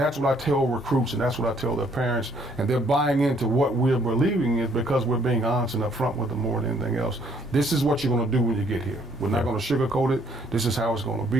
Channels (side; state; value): both; normal; correlation 0.65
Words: what I tell recruits and that's what I tell their parents. And they're buying into what we're believing is because we're being honest and upfront with them more than anything else. This is what you're going to do when you get here. We're not going to sugarcoat it. This is how it's going to